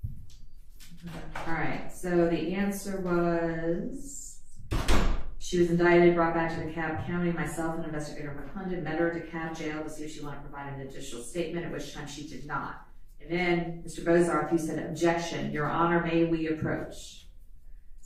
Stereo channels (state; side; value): identical; both; correlation 1.00